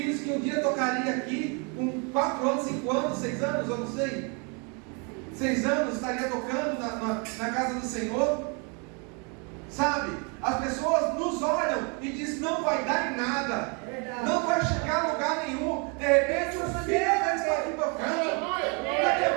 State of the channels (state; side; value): quieter; left; 34.3 dB